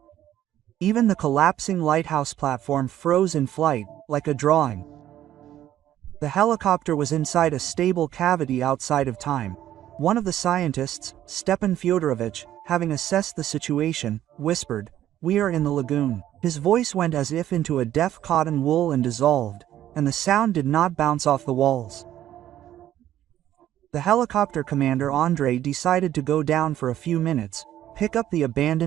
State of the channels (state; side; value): quieter; left; 12.2 dB